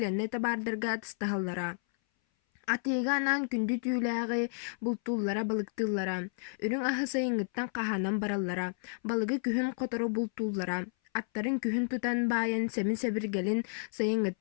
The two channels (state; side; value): silent; right; 57 dB below the other